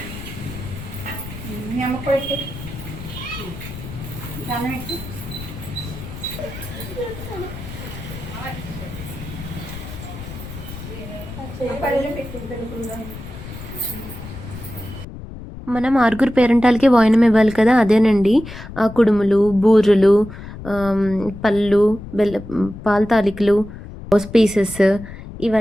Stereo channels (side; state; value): left; noise; rumble, 12 dB below the sound